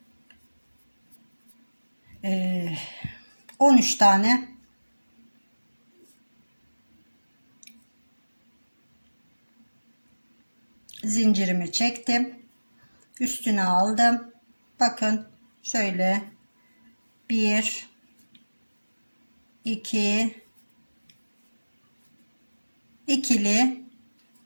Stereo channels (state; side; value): inverted; both; correlation -1.00